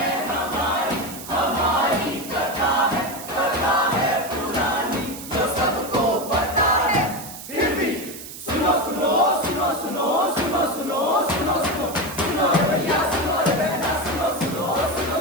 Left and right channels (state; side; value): noise; right; hiss, 12 dB below the sound